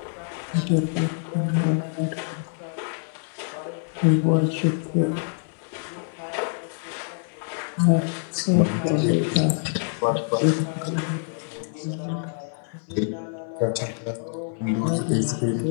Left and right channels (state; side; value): silent; right; 61 dB below the other